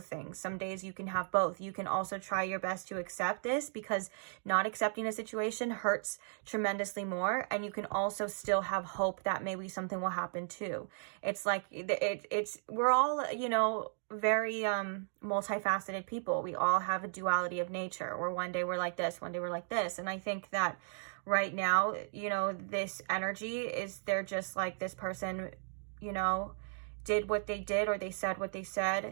things. Some days you can have both. You can also try your best to accept this, because not accepting a situation hurts tremendously more. And you can also still have hope that maybe something will happen too. It's like, we're all, you know, very multifaceted people. We all have a duality of nature, where one day we're like this, one day we're like this. And I think that right now, you know, this energy is, they're just like, this person, you know, did what they did, or they said what they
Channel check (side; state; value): left; silent; digital silence